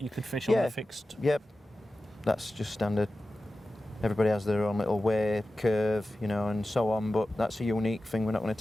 you could fish on a fixed. Yep, that's just standard. Everybody has their own little way, curve, and so on. But that's a unique thing. We're not going to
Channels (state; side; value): normal; both; correlation 0.94